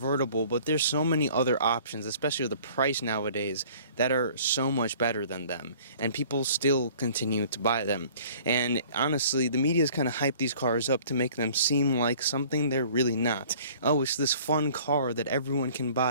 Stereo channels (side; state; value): both; inverted; correlation -0.51